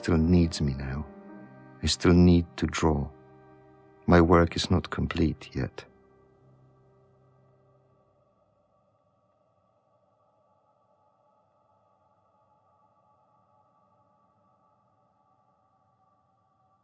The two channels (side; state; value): both; identical; correlation 1.00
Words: needs me now. I still need to draw. My work is not complete yet.